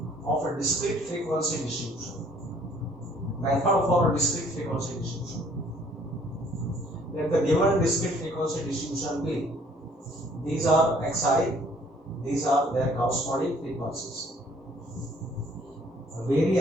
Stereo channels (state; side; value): normal; both; correlation 0.59